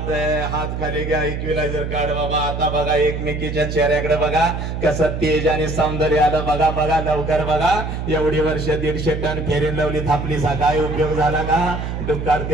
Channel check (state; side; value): noise; right; hum, 4 dB below the sound